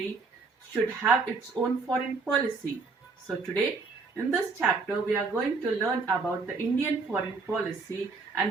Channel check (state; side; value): quieter; left; 4.3 dB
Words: should have its own foreign policy. So today, in this chapter, we are going to learn about the Indian foreign policy and